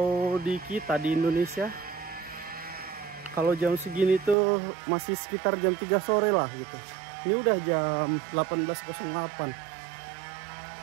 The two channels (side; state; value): left; drops out; at 4.4 s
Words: di kita di Indonesia, kalau jam segini tuh masih sekitar jam 3 sore lah gitu. Ini udah jam 18.08.